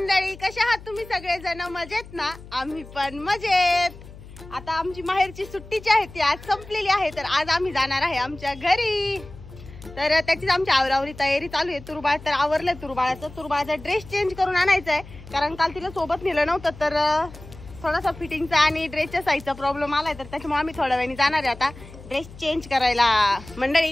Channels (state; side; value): noise; left; hum, 17 dB below the sound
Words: कशा आहात तुम्ही सगळेजण? मजेत ना? आम्ही पण मजेत। आता आमची माहेरची सुट्टीची आहे ती आज संपलेली आहे, तर आज आम्ही जाणार आहे आमच्या घरी। तर त्याचीच आमची आवरावरी तयारी चालू आहे। तुरबाळ तर आवरलंय, तुरबाळाचा ड्रेस चेंज करून आणायचा आहे, कारण काल तिला सोबत नेलं नव्हतं, तर थोडासा फिटिंगचा आणि ड्रेसच्या साईजचा प्रॉब्लेम आलाय, तर त्याच्यामुळे आम्ही थोड्या वेळाने जाणार आहे आता ड्रेस चेंज करायला।